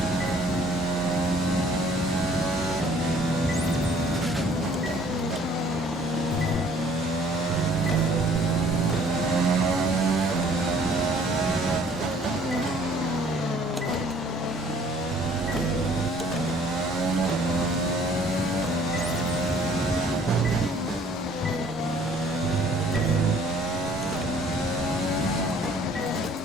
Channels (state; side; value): normal; both; correlation 0.57